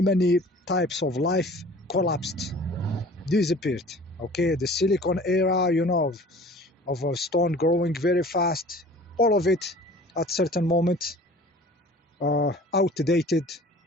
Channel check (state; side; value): normal; both; correlation 0.46